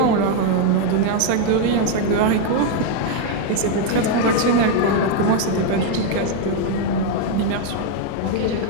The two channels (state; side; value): different; both; correlation 0.01